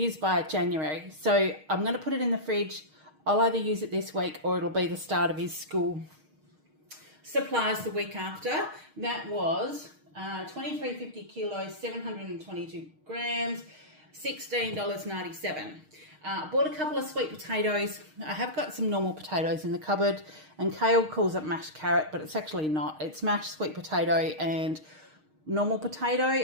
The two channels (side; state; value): left; late; 6.5 ms